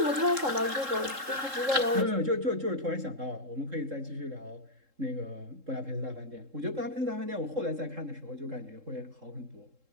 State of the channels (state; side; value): late; left; 3.7 ms